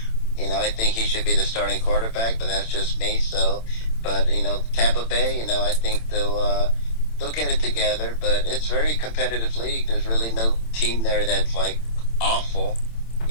think he should be the starting quarterback. But that's just me. So, but Tampa Bay, I think they'll get it together. But it's a very competitive league. There's really no team there that's like awful.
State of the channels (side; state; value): right; late; 27 ms